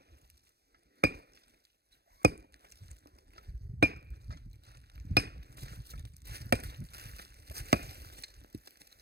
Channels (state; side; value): late; left; 0.47 ms